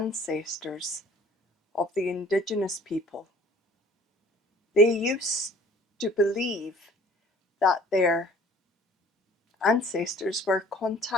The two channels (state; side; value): normal; both; correlation 0.52